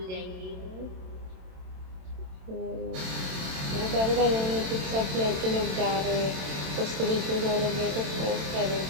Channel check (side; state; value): left; late; 27 ms